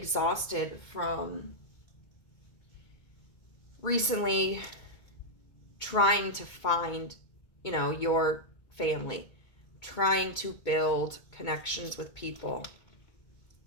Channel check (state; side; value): late; right; 2.2 ms